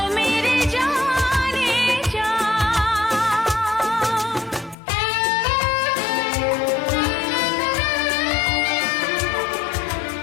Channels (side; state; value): right; drops out; at 4.8 s